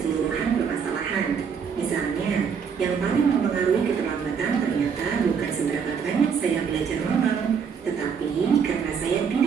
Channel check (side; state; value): left; quieter; 6.6 dB